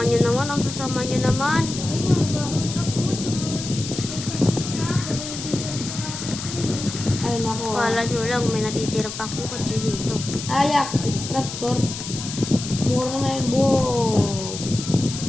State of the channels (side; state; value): left; noise; hiss, 8 dB below the sound